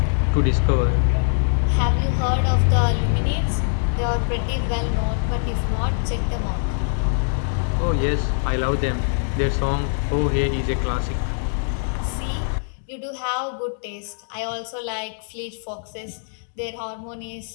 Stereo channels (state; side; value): silent; right; digital silence